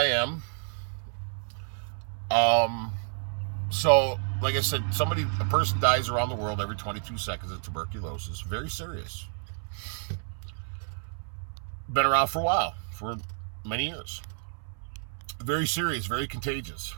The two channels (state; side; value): silent; left; 58 dB below the other